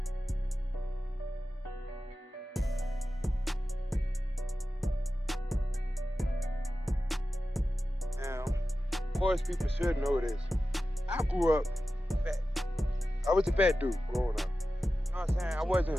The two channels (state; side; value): normal; both; correlation 0.94